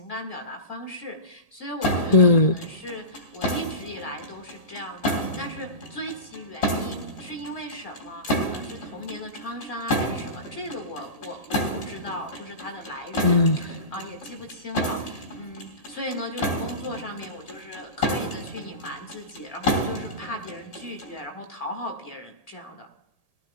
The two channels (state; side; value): late; right; 1.8 ms